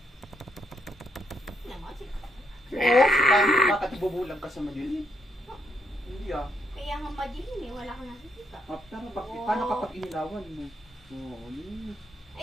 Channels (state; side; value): normal; both; correlation 0.75